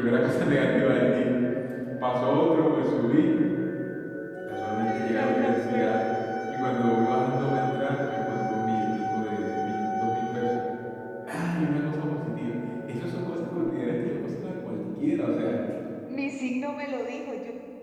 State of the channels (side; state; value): both; identical; correlation 1.00